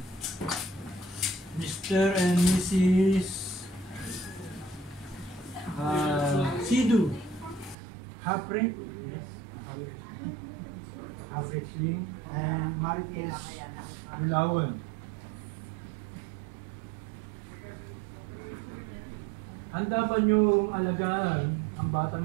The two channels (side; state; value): left; drops out; at 7.8 s